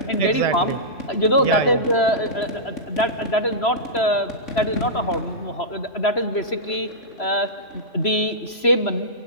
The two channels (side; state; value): right; late; 3.0 ms